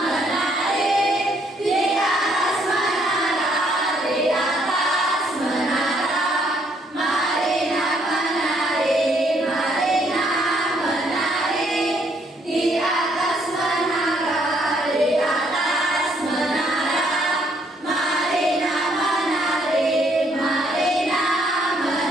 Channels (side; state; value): both; normal; correlation 0.69